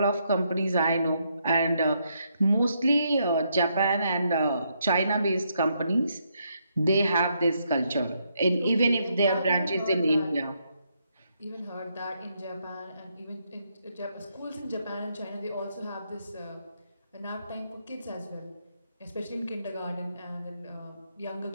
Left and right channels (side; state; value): both; inverted; correlation -0.76